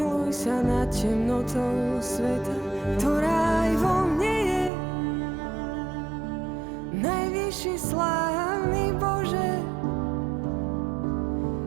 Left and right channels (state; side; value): drops out; left; at 4.7 s